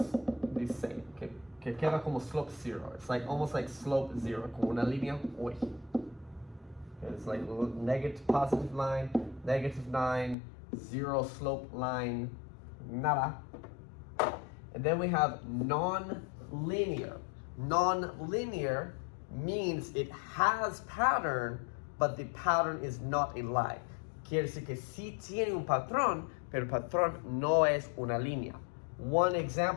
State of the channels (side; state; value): right; drops out; at 10.4 s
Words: the same. Que queda como slope zero. It's like almost like slope zero. Como una línea. Uy. It's like negative positive line, negative 9, zero slope line, nada. And then we have non-linear. Non-linear means it has pattern, but the pattern is not a line. Quiere decir que sí tiene un patrón, pero el patrón no es una línea. One